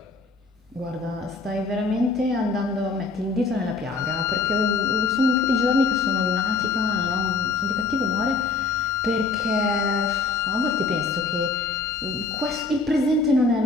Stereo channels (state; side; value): quieter; right; 4.1 dB